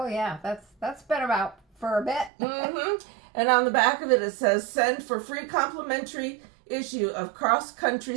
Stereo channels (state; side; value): drops out; left; at 2.3 s